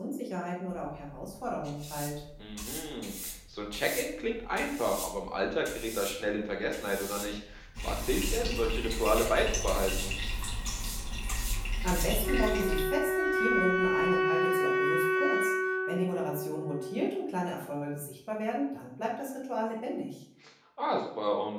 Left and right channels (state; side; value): identical; both; correlation 1.00